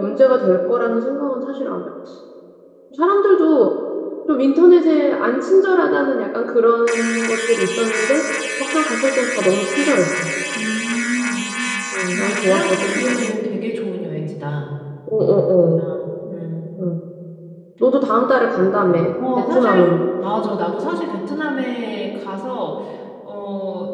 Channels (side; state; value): both; identical; correlation 1.00